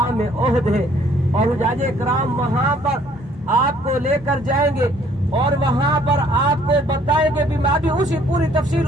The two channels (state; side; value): normal; both; correlation 0.61